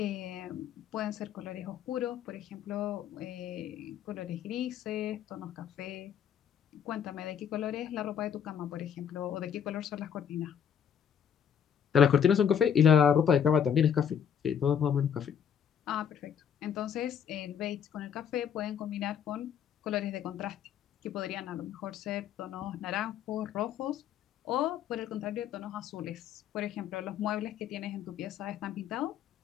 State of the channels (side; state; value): right; quieter; 8.3 dB